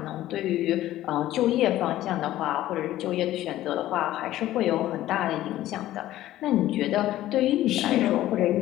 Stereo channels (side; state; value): right; quieter; 14.3 dB